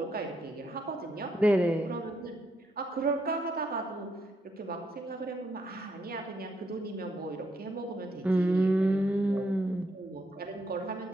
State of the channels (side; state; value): both; normal; correlation 0.76